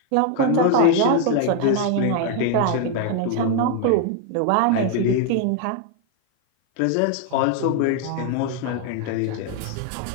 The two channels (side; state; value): both; different; correlation 0.00